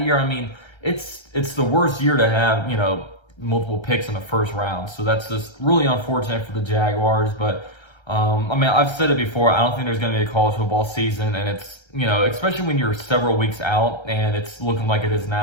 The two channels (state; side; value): late; right; 1.3 ms